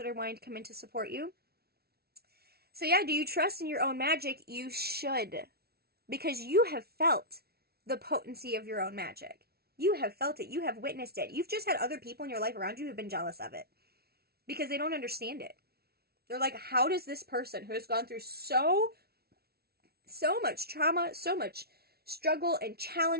are wanting to come in to support you. So yeah, do you trust in your own magic? You should. Because you have felt the potency of your own magic. You have felt it. You have witnessed it. You've just had other people in your life around you who've been jealous of it. Because they don't understand it. They're like, how does this person who has gone through so much trauma, so much struggle and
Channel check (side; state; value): left; late; 0.45 ms